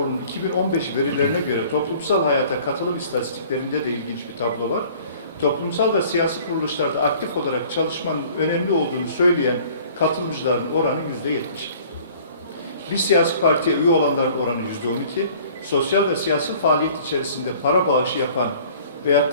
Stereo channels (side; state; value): both; inverted; correlation -0.51